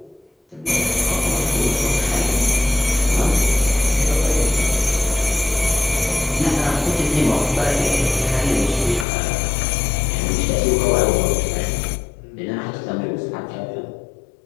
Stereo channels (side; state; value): right; drops out; at 9.1 s